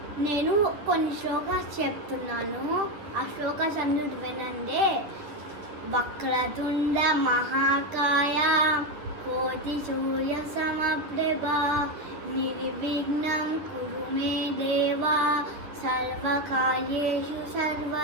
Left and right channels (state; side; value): late; left; 9.9 ms